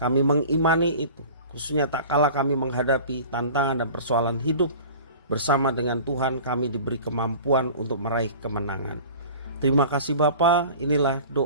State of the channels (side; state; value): both; inverted; correlation -0.41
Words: mengimani itu, khususnya tak kala kami menghadapi tantangan dan persoalan hidup. Bersama dengan Tuhan kami diberi kemampuan untuk meraih kemenangan. Terima kasih Bapa, inilah